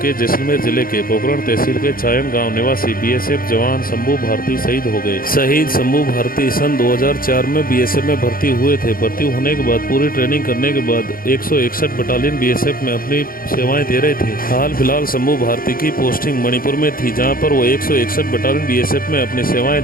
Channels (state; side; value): late; right; 0.42 ms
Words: के जैसलमेर जिले के पोखरण तहसील के चायन गांव निवासी BSF जवान शंभू भारती शहीद हो गए। शहीद शंभू भारती सन 2004 में BSF में भर्ती हुए थे। भर्ती होने के बाद पूरी ट्रेनिंग करने के बाद 161 बटालियन BSF में अपनी सेवाएं दे रहे थे। हाल फिलहाल शंभू भारती की पोस्टिंग मणिपुर में थी, जहाँ पर वो 161 बटालियन BSF में अपनी सेवाएं